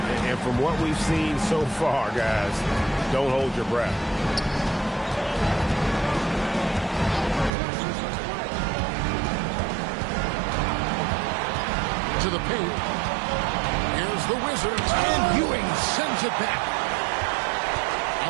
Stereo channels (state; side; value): drops out; left; at 7.5 s